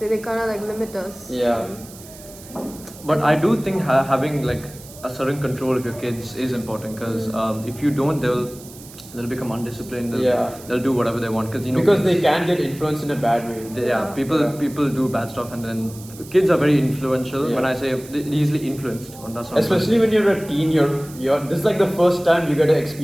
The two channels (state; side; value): noise; right; hiss, 19 dB below the sound